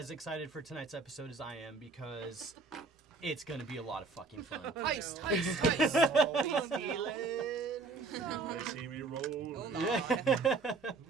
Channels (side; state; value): left; quieter; 4.1 dB